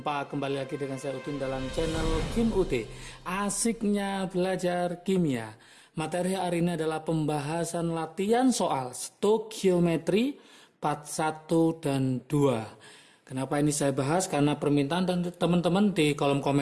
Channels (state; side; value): identical; both; correlation 1.00